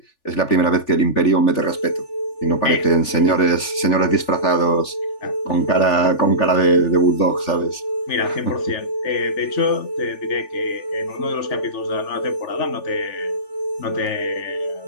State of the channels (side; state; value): right; late; 3.4 ms